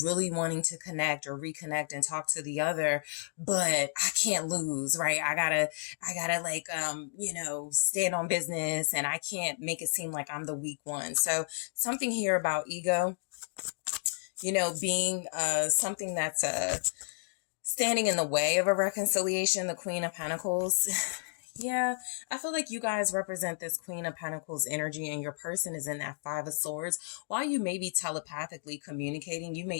really wanting to connect or reconnect and talk to the other, but I can't lose, right? I gotta like, you know, stand on business and I can't make it seem like I'm the weak one. So something here about ego, you know, being, something that's, standing in the way of a reconciliation, the Queen of Pentacles. Yeah, I feel like you guys represent this Queen of Pentacles energy and your person is in that Five of Swords. While you may be telepathically communicating, you may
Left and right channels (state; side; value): silent; right; digital silence